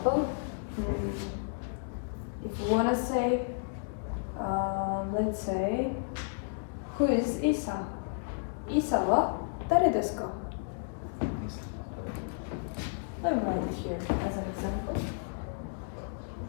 if you want to say, let's say, who is Isa? Isa wa dare desu ka? Let me write it here as an example.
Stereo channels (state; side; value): silent; right; digital silence